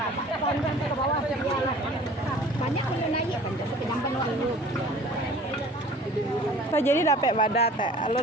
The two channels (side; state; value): both; normal; correlation 0.47